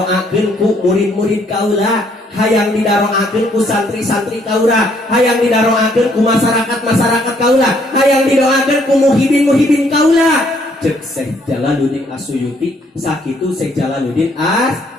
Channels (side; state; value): both; normal; correlation 0.67